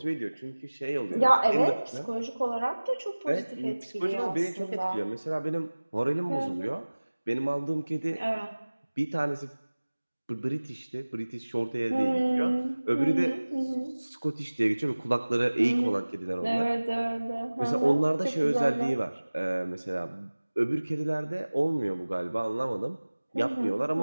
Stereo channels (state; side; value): inverted; both; correlation -1.00